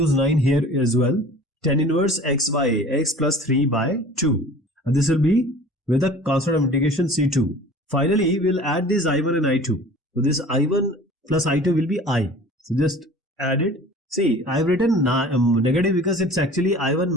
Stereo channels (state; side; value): normal; both; correlation 0.44